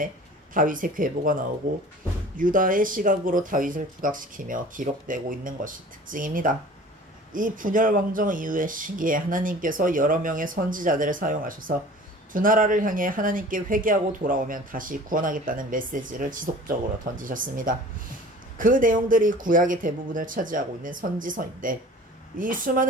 다윗의 괴보가 나오고 유다의 시각으로 다윗을 부각시키며 기록되고 있는 것이 특징입니다. 이 분열 왕정 이후의 시기에 하나님께서 여러 명의 선지자들을 사용하셔서 두 나라를 향해 하나님께 회개하고 돌아오면 다시 구원하겠다는 메시지를 지속적으로 던지셨습니다. 그 내용들이 구약의 대부분을 차지하고 있는 선지서인데 이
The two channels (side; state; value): both; normal; correlation 0.45